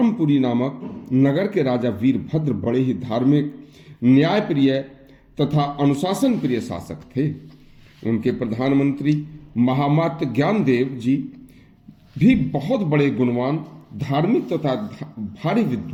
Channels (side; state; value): both; identical; correlation 1.00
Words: नामक नगर के राजा वीरभद्र बड़े ही धार्मिक, न्यायप्रिय तथा अनुशासन प्रिय शासक थे। उनके प्रधानमंत्री महामात्य ज्ञानदेव जी भी बहुत बड़े गुणवान, धार्मिक तथा भारी